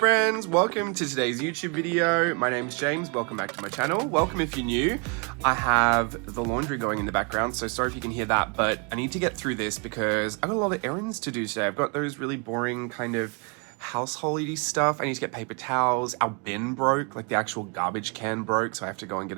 welcome to today's YouTube video. My name's James, welcome back to my channel. Welcome if you're new. I have the laundry going in the background, so sorry if you can hear that, but I need to get through this because I've got a lot of errands to do today. I've got those really boring kind of householdy stuff. I need to get paper towels. Our bin broke, like the actual garbage can broke, so I have to go and get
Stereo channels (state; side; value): quieter; left; 34.7 dB